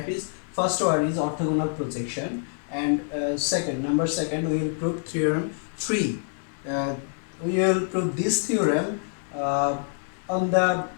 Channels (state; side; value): silent; right; digital silence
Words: is, first one is orthogonal projection, and number second, we will prove theorem 3. We will prove this theorem on the